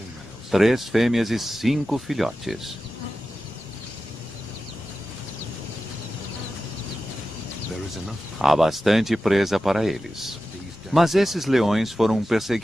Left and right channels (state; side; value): normal; both; correlation 0.93